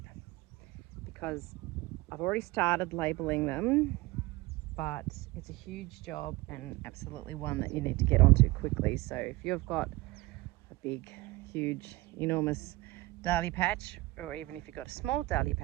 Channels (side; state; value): left; quieter; 20.4 dB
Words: because I've already started labeling them, but it's a huge job and absolutely one that you need to get onto quickly. So if you've got a big, huge, enormous dahlia patch, or even if you've got a small dahlia